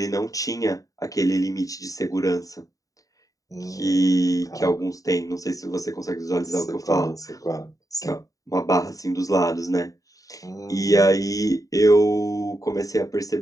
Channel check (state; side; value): late; right; 0.16 ms